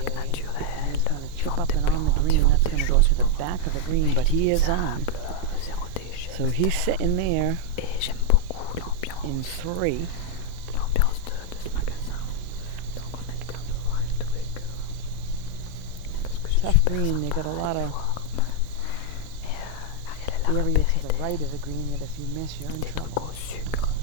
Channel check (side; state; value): both; different; correlation 0.00